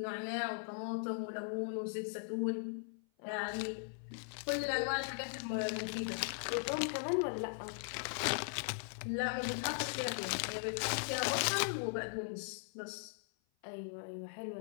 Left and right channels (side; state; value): right; silent; 52 dB below the other